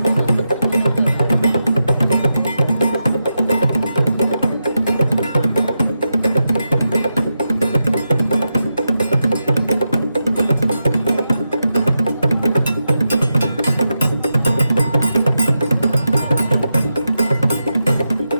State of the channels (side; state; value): both; inverted; correlation -0.88